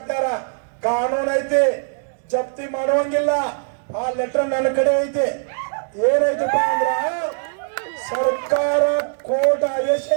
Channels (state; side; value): silent; left; 65 dB below the other